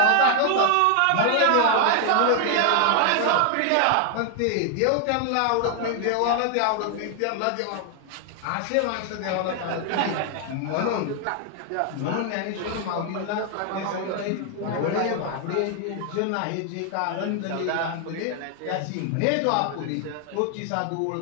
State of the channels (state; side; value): different; both; correlation 0.00